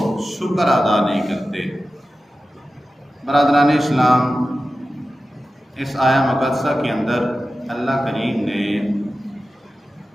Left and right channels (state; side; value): normal; both; correlation 0.94